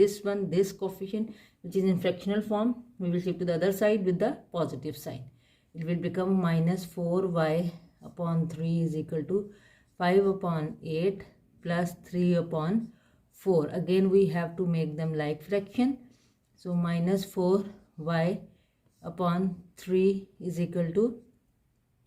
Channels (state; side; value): identical; both; correlation 1.00